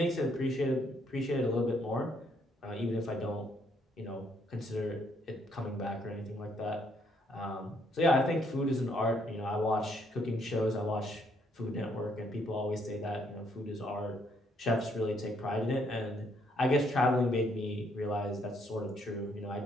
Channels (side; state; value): both; normal; correlation 0.70